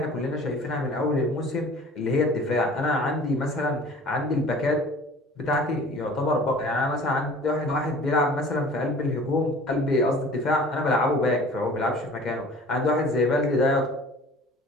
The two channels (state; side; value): normal; both; correlation 0.46